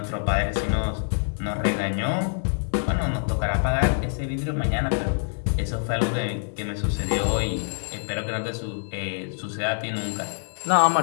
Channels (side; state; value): right; silent; digital silence